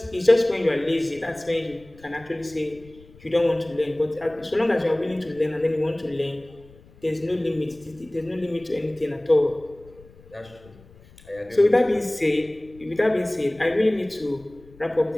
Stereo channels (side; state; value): left; noise; rumble, 24 dB below the sound